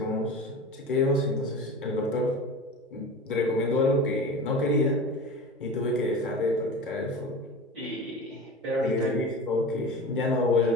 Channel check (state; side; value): normal; both; correlation 0.33